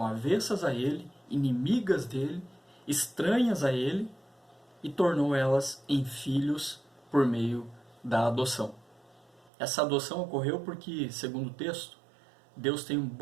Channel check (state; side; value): drops out; left; at 9.5 s